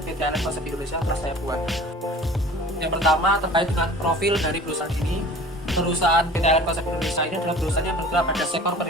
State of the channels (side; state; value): both; normal; correlation 0.44